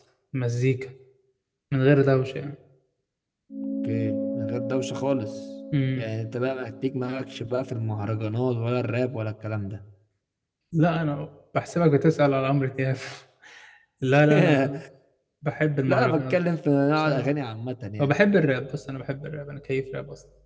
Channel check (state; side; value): identical; both; correlation 1.00